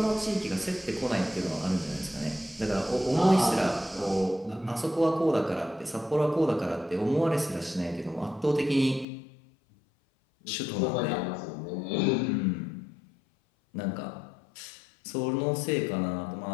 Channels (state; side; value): drops out; right; at 9.1 s